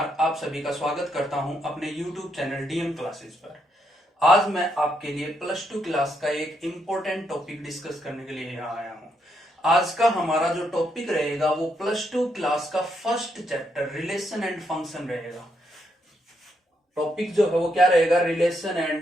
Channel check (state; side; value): normal; both; correlation 0.78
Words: आप सभी का स्वागत करता हूं अपने YouTube चैनल डीएम क्लासेस पर। आज मैं आपके लिए प्लस टू क्लास का एक इम्पोर्टेंट टॉपिक डिस्कस करने के लिए यहाँ आया हूं। आज का हमारा जो टॉपिक रहेगा वो प्लस टू क्लास का first chapter relation and function रहेगा। टॉपिक जो है वो क्या रहेगा? Relation